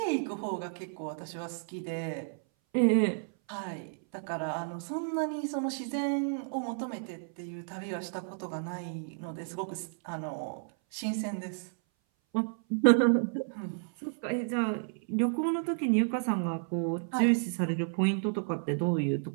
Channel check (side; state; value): left; silent; 56 dB below the other